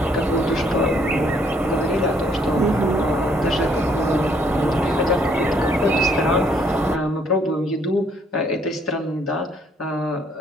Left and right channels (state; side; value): normal; both; correlation 0.66